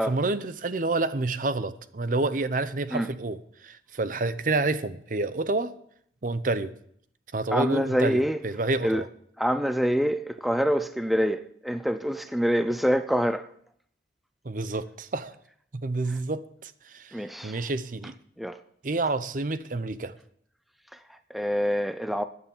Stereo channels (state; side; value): normal; both; correlation 0.64